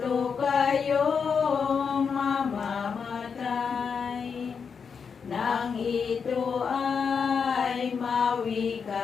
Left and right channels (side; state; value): right; quieter; 6.1 dB